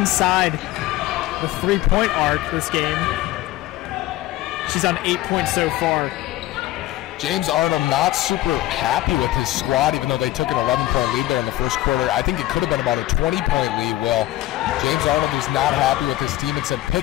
the 3-point arc this game. She's on 8 points so far. James Arnold not super happy with his squad, even though they took an 11-point lead there in the first quarter. I think it could have been about a 20-point lead, Will. James Arnold was not happy with his team and said,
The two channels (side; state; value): right; quieter; 15.9 dB